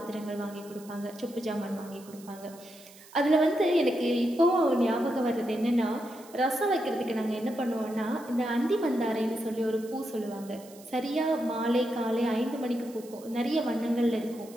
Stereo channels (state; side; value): noise; right; hiss, 22 dB below the sound